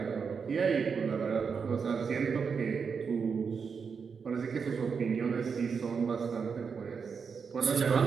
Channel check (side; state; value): left; quieter; 5.9 dB